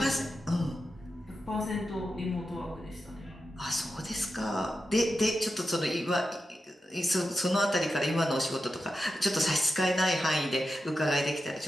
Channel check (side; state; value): both; normal; correlation 0.90